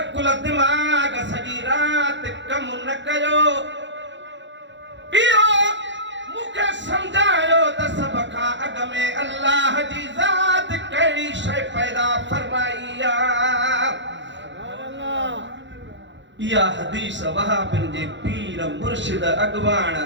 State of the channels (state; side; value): late; left; 0.53 ms